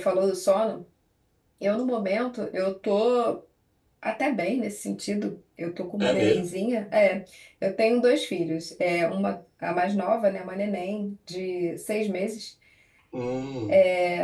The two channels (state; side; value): identical; both; correlation 1.00